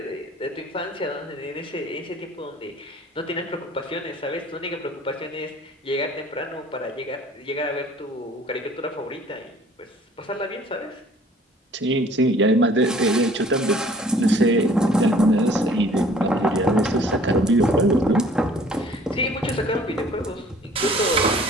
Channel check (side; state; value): both; normal; correlation 0.53